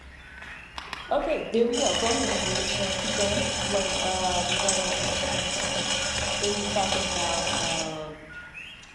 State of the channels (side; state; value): both; identical; correlation 1.00